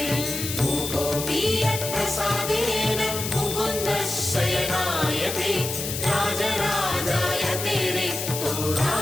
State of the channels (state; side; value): noise; left; hiss, 5 dB below the sound